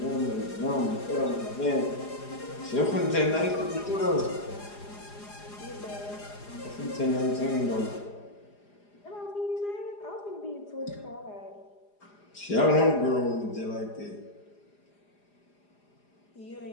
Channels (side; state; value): right; late; 4.9 ms